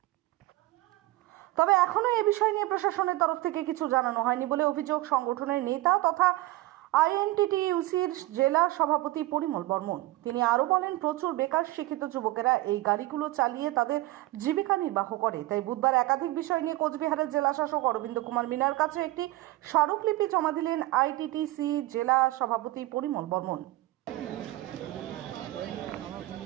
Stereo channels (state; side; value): quieter; left; 18.1 dB